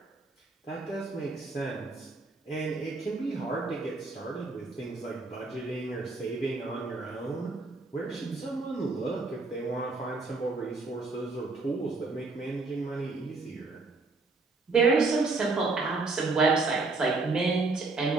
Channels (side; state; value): left; quieter; 3.7 dB